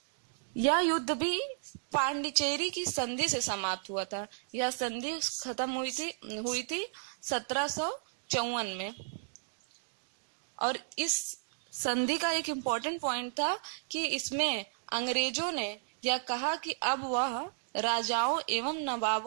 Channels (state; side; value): silent; left; digital silence